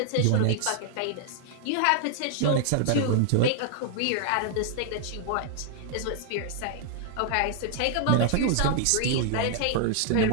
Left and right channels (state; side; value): different; both; correlation 0.00